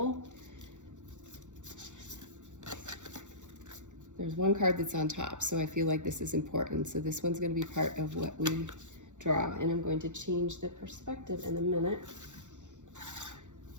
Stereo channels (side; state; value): left; late; 0.85 ms